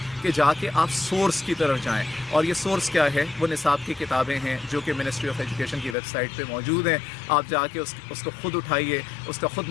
کہ جا کے آپ سورس کی طرف جائیں، اور یہ سورس کیا ہے؟ وہ نصاب کی کتابیں ہیں جو کہ منسٹری آف ایجوکیشن کی ویب سائٹ پہ موجود ہیں۔ آپ جا کے اس کو خود اٹھائیے، اس کا خود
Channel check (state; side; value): drops out; right; at 6.0 s